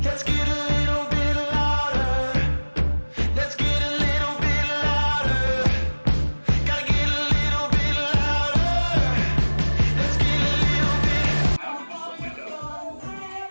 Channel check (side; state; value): both; inverted; correlation -1.00